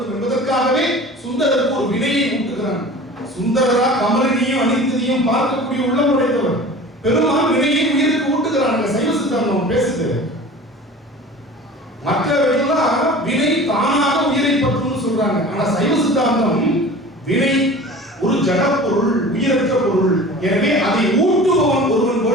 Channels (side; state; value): both; normal; correlation 0.40